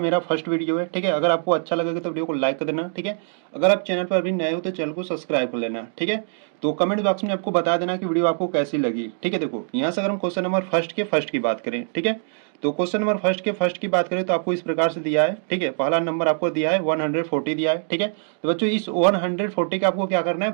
फर्स्ट वीडियो है। ठीक है, अगर आपको अच्छा लगेगा तो वीडियो को लाइक कर देना। ठीक है, अगर आप चैनल पर अभी नए हो तो चैनल को सब्सक्राइब कर लेना। ठीक है, तो कमेंट बॉक्स में आपको बता देना कि वीडियो आपको कैसी लगी। ठीक है, देखो यहाँ से अगर हम क्वेश्चन नंबर फर्स्ट की बात करें, ठीक है, तो क्वेश्चन नंबर फर्स्ट की बात करें तो आपको इस प्रकार से दिया है। ठीक है, पहला नंबर आपको दिया है 140 दिया है। ठीक है, तो बच्चों इस 140 का आपको क्या करना है,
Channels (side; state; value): left; silent; digital silence